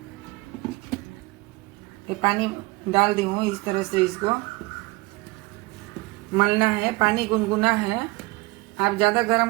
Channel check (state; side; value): quieter; left; 23.3 dB